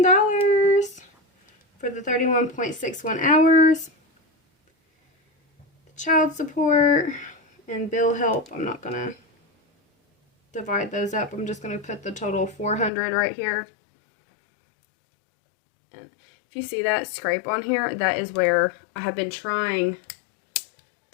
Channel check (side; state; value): right; drops out; at 12.9 s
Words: for the 31.61 hours. The child support and bill help, I'm not gonna divide those up. I'm just gonna put the total 400 right here. And if you see that scrape on here, that is where I have been trying